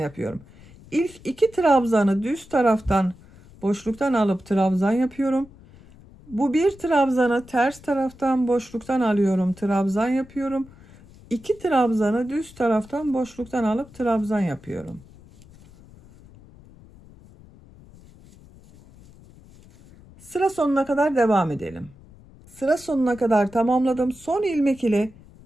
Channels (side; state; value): left; noise; rumble, 23 dB below the sound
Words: İlk 2 trabzanı düz taraftan boşluktan alıp trabzan yapıyorum. Bu bir trabzanı ters taraftan boşluktan alıyorum, trabzan yapıyorum. 2 trabzanı düz taraftan boşluktan alıp trabzan yapıyorum. Sıra sonuna kadar devam edelim. Sıra sonuna kadar tamamladım. Son ilmek ile